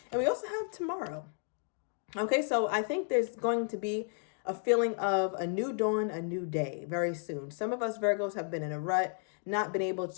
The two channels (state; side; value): silent; right; 56 dB below the other